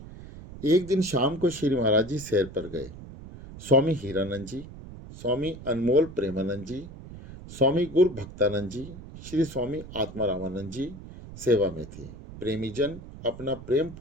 एक दिन शाम को श्री महाराज जी सैर पर गए। स्वामी हीरानंद जी, स्वामी अनमोल प्रेमानंद जी, स्वामी गुरु भक्तानंद जी, श्री स्वामी आत्मारामानंद जी सेवा में थे। प्रेमीजन अपना प्रेम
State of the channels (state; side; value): noise; right; rumble, 14 dB below the sound